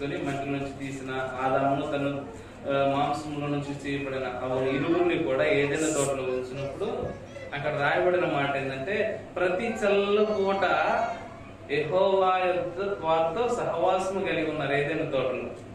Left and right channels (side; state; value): both; identical; correlation 1.00